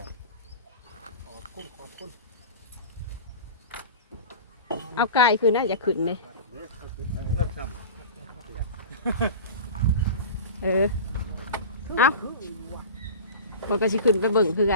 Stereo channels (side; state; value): both; inverted; correlation -0.33